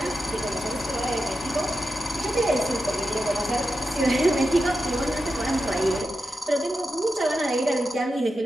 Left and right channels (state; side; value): normal; both; correlation 0.90